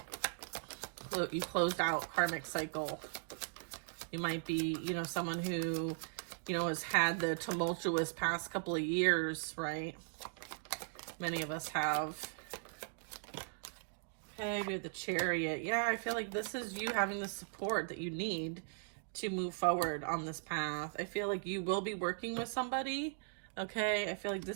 You closed out karmic cycle. You might be, you know, someone who, you know, has had the tumultuous past couple of years, right? Many of us have. Okay, we have the Chariot. Yeah, I feel like this is you having the support that you need to move forward on this path. I feel like you will be working with somebody, okay? I feel like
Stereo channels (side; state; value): left; silent; digital silence